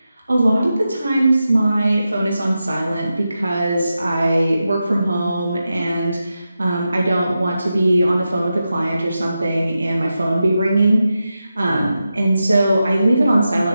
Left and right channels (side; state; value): both; inverted; correlation -0.90